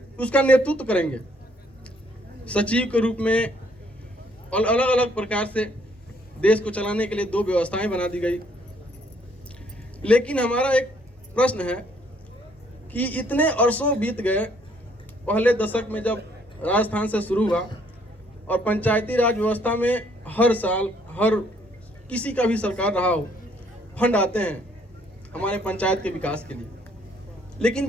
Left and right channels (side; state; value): both; normal; correlation 0.66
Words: उसका नेतृत्व करेंगे सचिव के रूप में, और अलग अलग प्रकार से देश को चलाने के लिए 2 व्यवस्थाएं बना दी गई। लेकिन हमारा एक प्रश्न है कि इतने अरसों बीत गए, पहले दशक में जब राजस्थान से शुरू हुआ, और पंचायती राज व्यवस्था में हर साल हर किसी का भी सरकार रहा हो, फंड आते हैं हमारे पंचायत के विकास के लिए। लेकिन